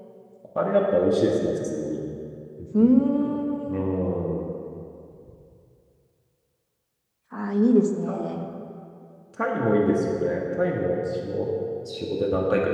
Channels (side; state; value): both; identical; correlation 1.00